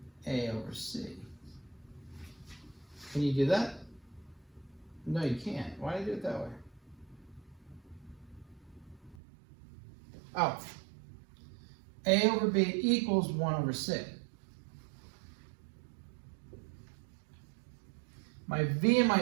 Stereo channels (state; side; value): drops out; left; at 9.2 s